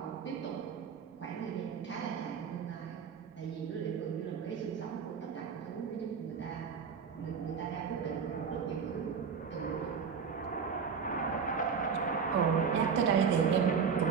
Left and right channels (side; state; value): left; quieter; 6.3 dB